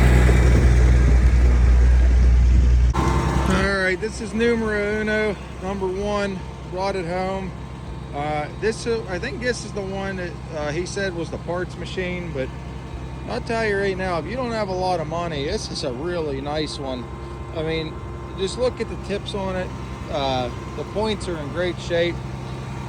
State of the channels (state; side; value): identical; both; correlation 1.00